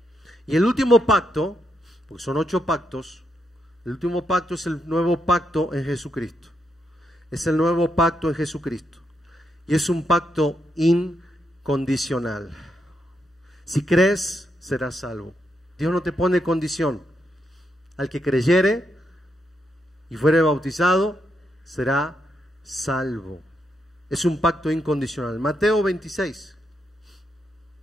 Y el último pacto, porque son 8 pactos, el último pacto es el nuevo pacto en Jesucristo. Es el nuevo pacto en Jesucristo. Y es un pacto incondicional. Si crees, serás salvo. Dios no te pone condición. Al que creyere y fuere bautizado, será salvo. Es un pacto incondicional. Mateo 26.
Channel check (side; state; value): both; normal; correlation 0.81